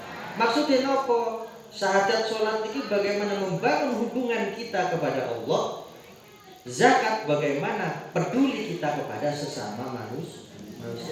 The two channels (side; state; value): both; identical; correlation 1.00